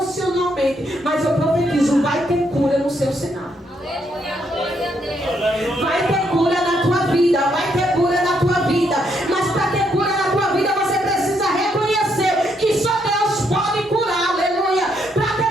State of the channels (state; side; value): normal; both; correlation 0.75